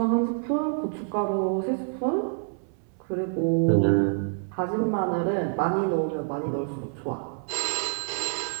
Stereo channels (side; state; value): left; silent; 60 dB below the other